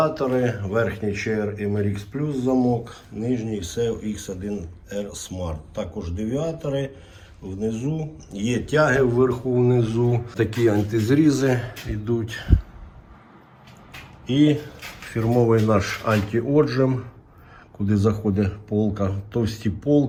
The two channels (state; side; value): identical; both; correlation 1.00